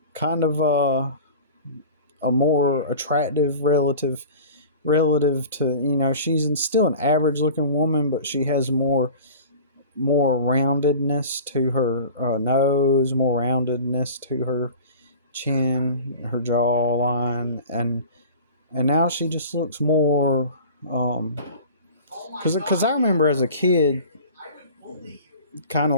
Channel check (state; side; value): inverted; both; correlation -0.40